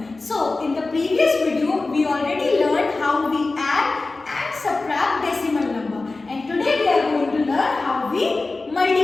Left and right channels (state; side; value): quieter; right; 3.4 dB